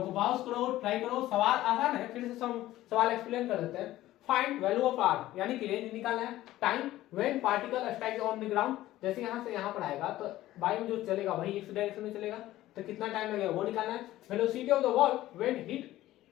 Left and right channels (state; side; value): quieter; right; 15.3 dB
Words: पॉज करो, ट्राई करो, सवाल आसान है, फिर से सवाल एक्सप्लेन कर देते हैं। फाइंड वैल्यू ऑफ r यानी कि रेंज निकालना है, time when particle strike on the ground, जैसे यहां से यहां पर आएगा तो बाई में जो चलेगा वही x डायरेक्शन में चलेगा, तो कितना टाइम लगेगा वो निकालना है। Velocity of the ball when hit